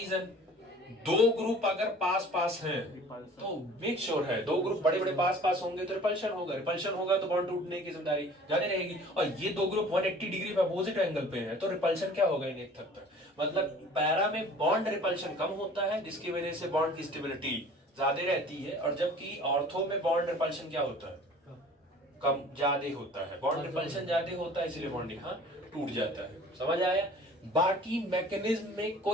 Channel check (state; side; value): normal; both; correlation 0.47